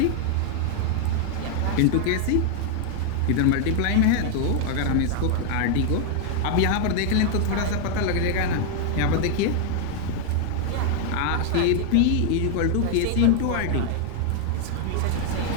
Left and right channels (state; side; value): different; both; correlation 0.00